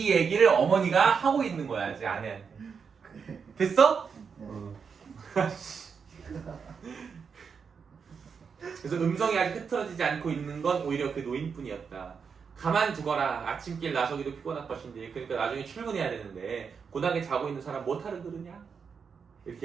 얘기를 어머니가 하고 있는 거야 제 아내한테. 됐어? 그래서 음성이 아직 흐트러지지 않고 있는 건 오히려 그 노인뿐이었다. 가만두거라. 아침길 나서기도 피곤할 것인데 그러니까 나중에 출근해야 되는데 고단하게 자고 있는 사람 못하러 그러냐?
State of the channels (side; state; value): left; quieter; 6.1 dB